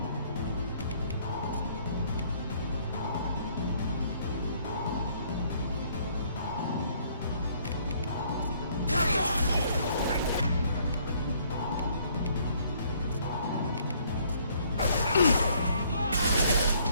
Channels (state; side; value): inverted; both; correlation -0.63